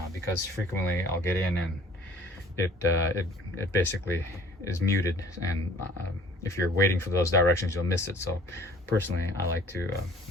because frequently I'll get in and it basically is muted, and if you're waiting for those directions, you'll miss it. So personally, I like to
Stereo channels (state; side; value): normal; both; correlation 0.52